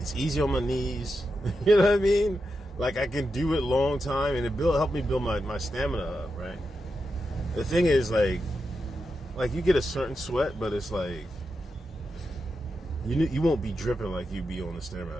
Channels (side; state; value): both; normal; correlation 0.87